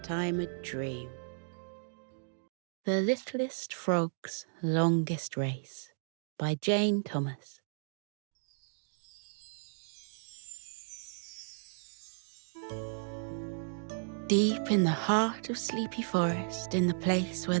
a dream. The Littlest Frog's Longest Race by Jane Thomas. Deep in the heart of Sleepy Forest, in the place where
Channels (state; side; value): silent; left; digital silence